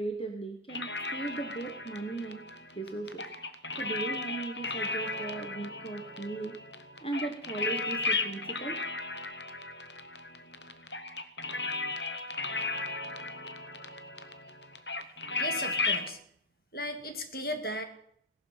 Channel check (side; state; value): both; normal; correlation 0.00